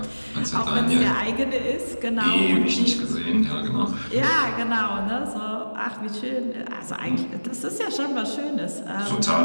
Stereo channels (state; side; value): inverted; both; correlation -1.00